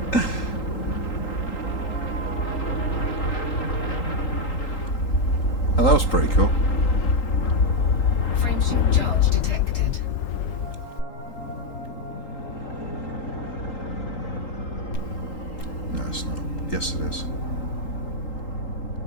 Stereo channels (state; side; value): late; right; 3.8 ms